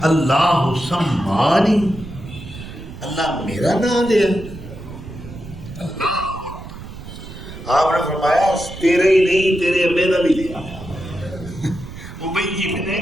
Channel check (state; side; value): noise; right; rumble, 13 dB below the sound